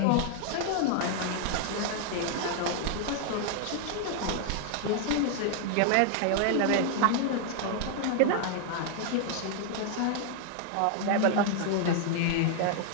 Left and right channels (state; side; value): different; both; correlation 0.00